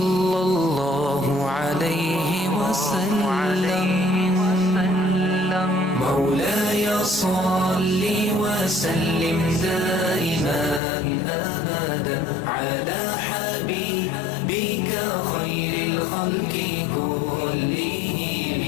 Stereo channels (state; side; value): drops out; right; at 10.8 s